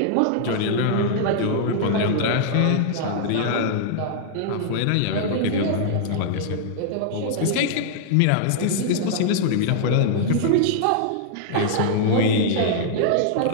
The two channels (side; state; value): both; different; correlation -0.01